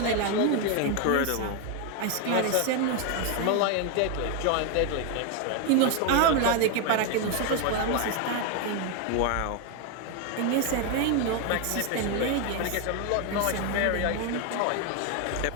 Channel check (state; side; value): different; both; correlation 0.01